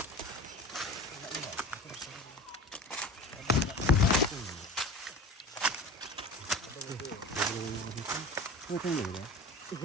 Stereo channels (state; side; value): normal; both; correlation 0.35